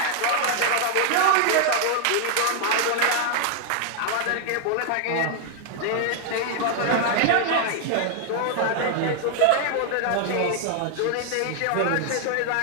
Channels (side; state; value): both; different; correlation 0.00